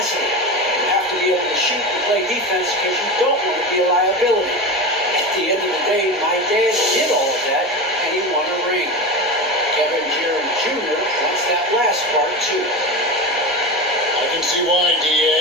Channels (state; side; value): normal; both; correlation 0.24